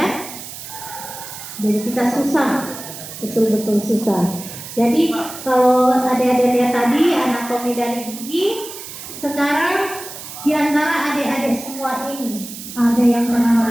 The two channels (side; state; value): right; noise; hiss, 12 dB below the sound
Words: Jadi kita susah, betul-betul susah. Jadi kalau adik-adik lihat tadi anatomi dari gigi, sekarang di antara adik-adik semua ini ada yang pernah